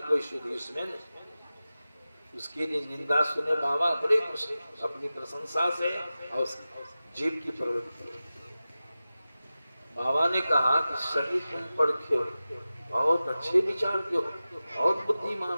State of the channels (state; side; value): inverted; both; correlation -0.95